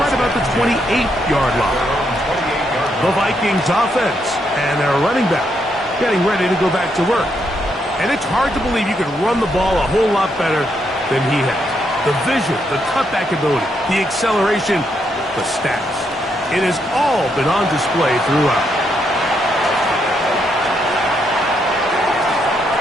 about the 28-yard line. The Vikings offense and their running back getting ready to go back to work. And it's hard to believe you can run the ball a whole lot better than he has. The vision, the cutback ability, the acceleration, the stats. It has all been on display throughout.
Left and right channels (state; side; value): normal; both; correlation 0.78